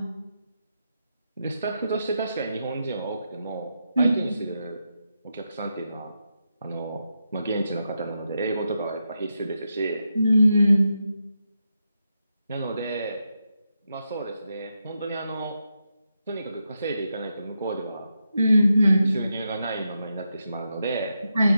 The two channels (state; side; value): inverted; both; correlation -0.85